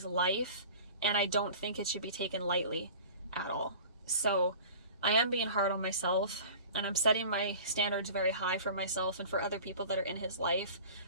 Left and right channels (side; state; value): both; inverted; correlation -0.41